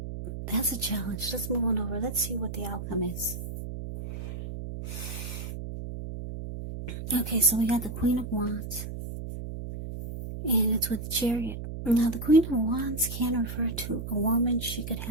that's a challenge. Let's move on over. Let's see what the outcome is. Okay, so we got the Queen of Wands, and it's with the Chariot. Now, the Queen of Wands can refer to a woman. She could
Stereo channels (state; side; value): noise; right; hum, 7 dB below the sound